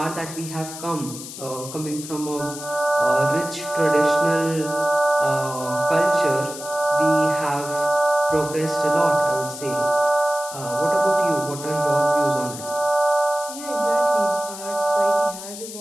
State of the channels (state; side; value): noise; left; hiss, 11 dB below the sound